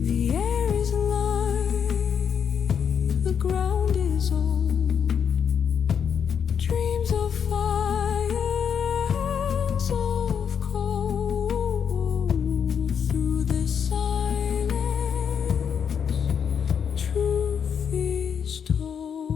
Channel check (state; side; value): quieter; right; 7.5 dB